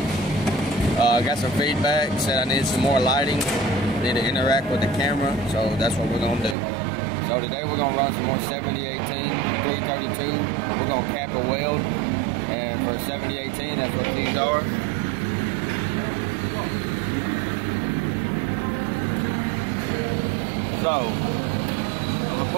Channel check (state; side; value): drops out; left; at 6.6 s